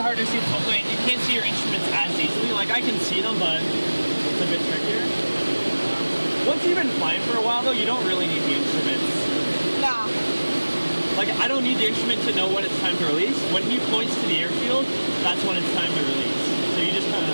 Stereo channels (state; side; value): inverted; both; correlation -1.00